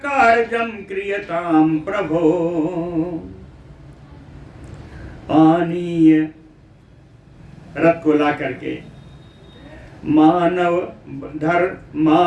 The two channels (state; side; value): identical; both; correlation 1.00